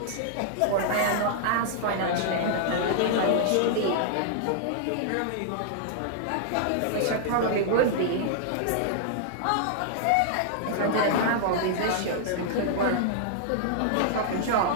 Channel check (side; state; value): both; different; correlation -0.01